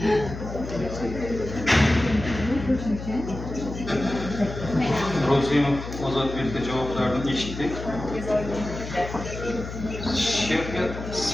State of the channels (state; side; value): noise; left; hum, 9 dB below the sound